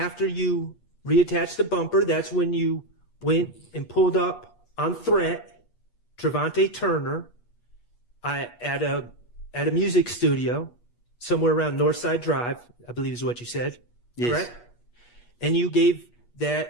you reattached the bumper, that's when you went and pulled up on threat Trevante Turner at a music studio somewhere around Northside Drive, I believe is what you said. Yes. Correct? And you gave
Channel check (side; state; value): right; late; 8.4 ms